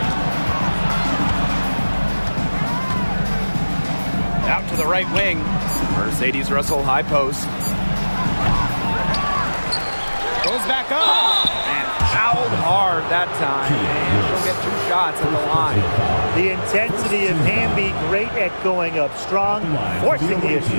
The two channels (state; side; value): inverted; both; correlation -1.00